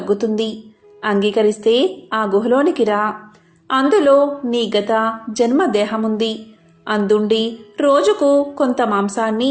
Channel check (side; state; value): both; identical; correlation 1.00